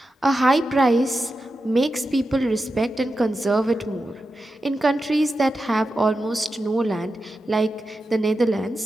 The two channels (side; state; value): both; normal; correlation 0.90